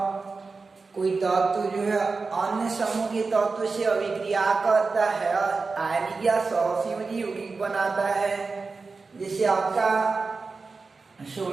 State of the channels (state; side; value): quieter; left; 4.2 dB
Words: कोई तत्व जो है अन्य समूह के तत्व से अभिक्रिया करता है, आयनिक या सहसंयोजी यौगिक बनाता है। जैसे आपका